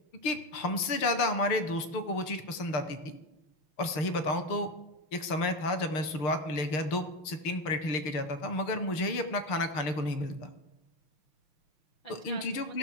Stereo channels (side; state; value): right; late; 6.6 ms